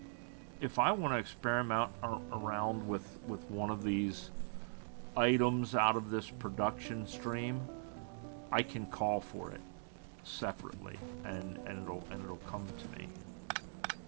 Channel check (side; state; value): left; silent; digital silence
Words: if I want to experiment around with one of these items out of this production stream, I can call for it separately, and it'll come to me.